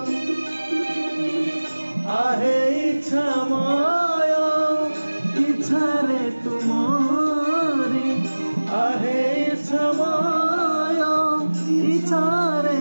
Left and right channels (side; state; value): both; inverted; correlation -1.00